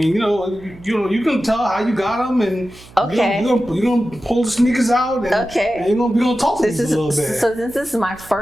you can tell how you got them, and okay, you're gonna pull the sneakers out, and, and we're gonna talk to these a little bit. So since this is my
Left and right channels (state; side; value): noise; right; hum, 22 dB below the sound